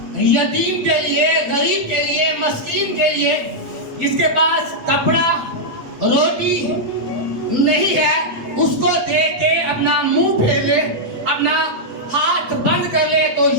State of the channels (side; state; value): left; late; 7.8 ms